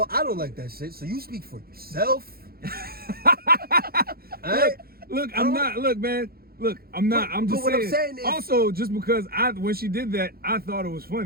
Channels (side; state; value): left; late; 0.44 ms